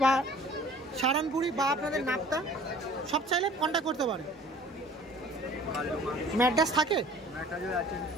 বা সাহারানপুরি বা আপনাদের নাপ্তা সব চাইলে কন্ট্যাক্ট করতে পারে। ম্যাড্রাস থাকে?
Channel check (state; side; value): normal; both; correlation 0.49